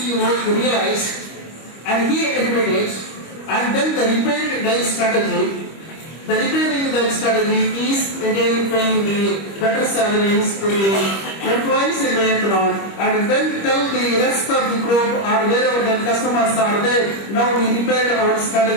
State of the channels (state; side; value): late; right; 25 ms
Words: realized, and he admitted, and then the repairing the strategy. The repairing the strategy is again paying the better salaries to the employees in Vietnam, and then tell the rest of the group or wherever the customers are there, now we repaired our